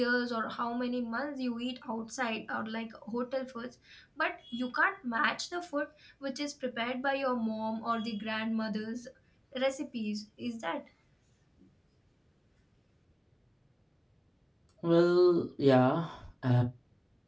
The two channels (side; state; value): both; identical; correlation 1.00